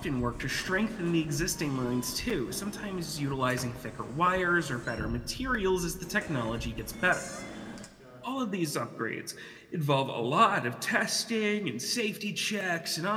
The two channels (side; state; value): both; identical; correlation 1.00